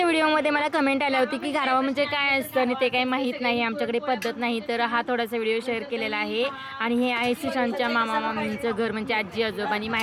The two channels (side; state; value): both; identical; correlation 1.00